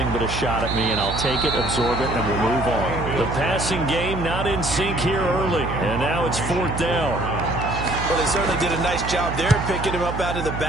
but a shot at me, and I'll take it, absorb it, and we'll move on. The passing game not in sync here early, and now it's 4th down. Well, they certainly did a nice job there, picking him up out of the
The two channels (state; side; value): noise; right; hum, 5 dB below the sound